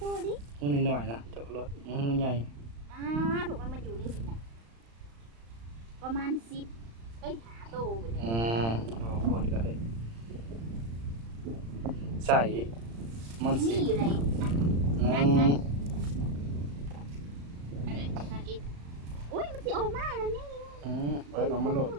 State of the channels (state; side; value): late; left; 35 ms